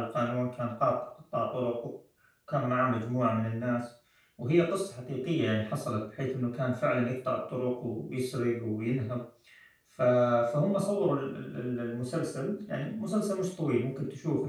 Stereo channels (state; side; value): identical; both; correlation 1.00